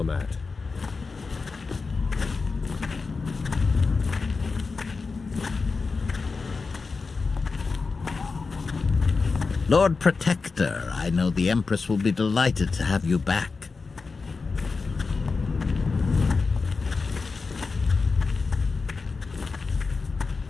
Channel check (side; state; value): right; quieter; 4.4 dB